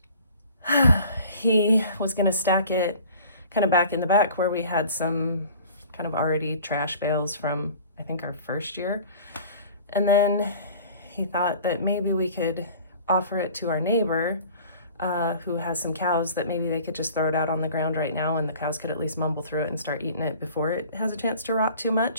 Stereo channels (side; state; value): both; inverted; correlation -0.46